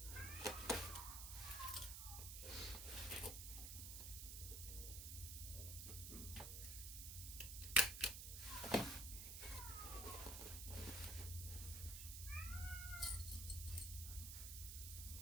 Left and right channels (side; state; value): right; noise; hiss, 5 dB below the sound